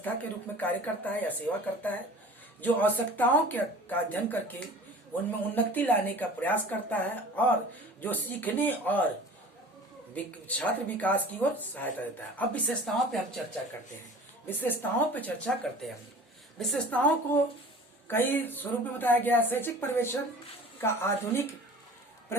के रूप में कार्य करता है या सेवा करता है, जो आवश्यकताओं का अध्ययन करके उनमें उन्नति लाने का प्रयास करता है और जो सीखने और छात्र विकास की ओर सहायता देता है। अब विशेषताओं पे हम चर्चा करते हैं। विशेषताओं को कई स्वरूप में बताया गया। शैक्षिक पर्यवेक्षण का आधुनिक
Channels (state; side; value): normal; both; correlation 0.42